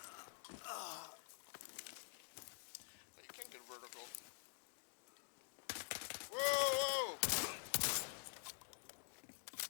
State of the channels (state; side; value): silent; right; digital silence